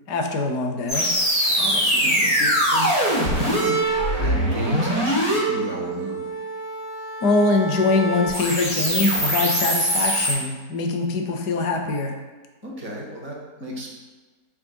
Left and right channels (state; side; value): late; right; 4.4 ms